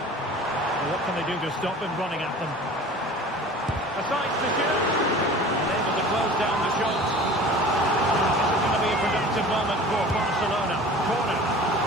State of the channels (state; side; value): normal; both; correlation 0.42